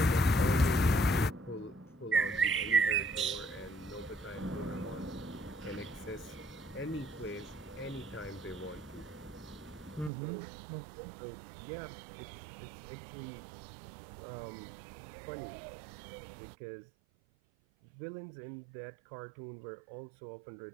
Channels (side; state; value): left; drops out; at 10.1 s